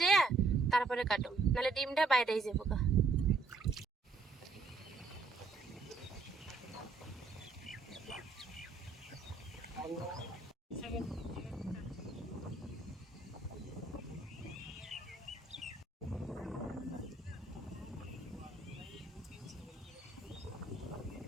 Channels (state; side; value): quieter; left; 3.8 dB